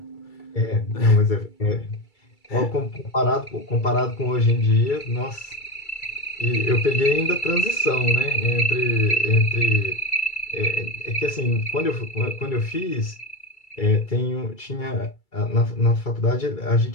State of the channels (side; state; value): right; late; 2.3 ms